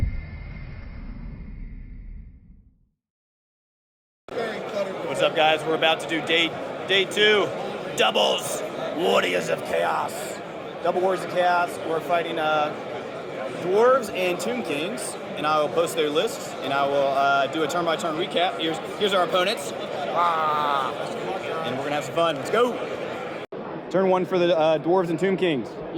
What's up, guys? We're about to do day 2 doubles, Warriors of Chaos. Double Warriors of Chaos. We're fighting dwarves and tomb kings, and I will post their lists, and I will do a turn-by-turn recap. Here's our opponents, and we're gonna have some fun. Let's go. Turn 1 for the dwarves and tomb kings. You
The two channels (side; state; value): both; identical; correlation 1.00